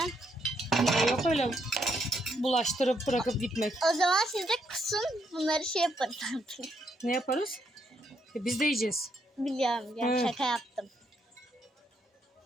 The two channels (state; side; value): normal; both; correlation 0.75